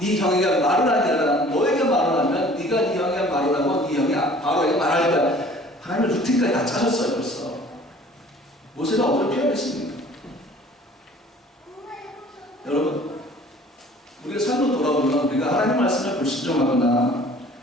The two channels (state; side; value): normal; both; correlation 0.50